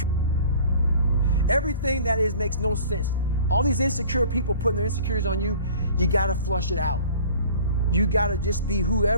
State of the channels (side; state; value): both; inverted; correlation -0.47